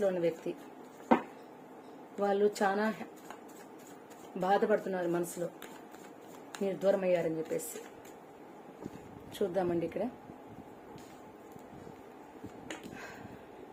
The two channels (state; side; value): identical; both; correlation 1.00